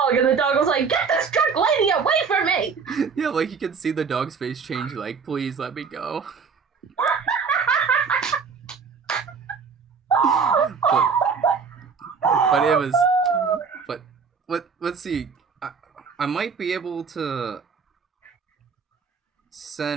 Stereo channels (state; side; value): quieter; left; 5.7 dB